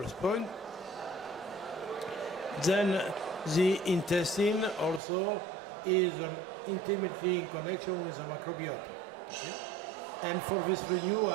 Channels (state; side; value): drops out; left; at 5.0 s